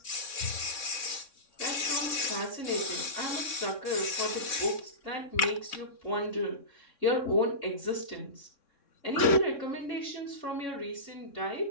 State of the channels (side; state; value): right; late; 3.6 ms